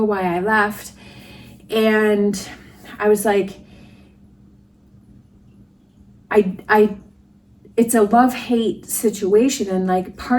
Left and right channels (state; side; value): identical; both; correlation 1.00